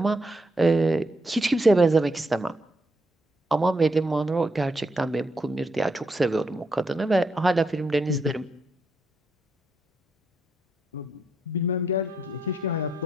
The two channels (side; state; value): both; normal; correlation 0.79